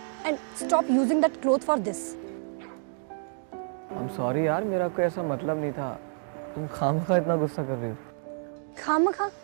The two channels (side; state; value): left; silent; digital silence